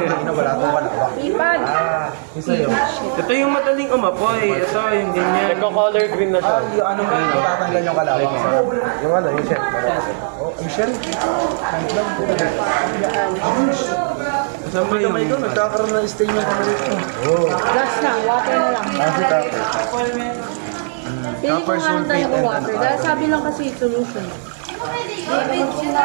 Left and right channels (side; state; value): left; silent; digital silence